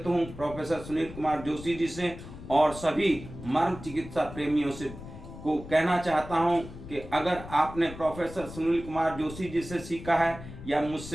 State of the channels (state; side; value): noise; left; rumble, 13 dB below the sound